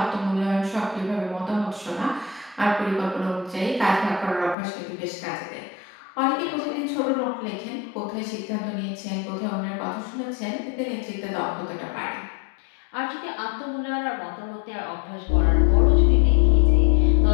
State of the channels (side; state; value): right; drops out; at 4.5 s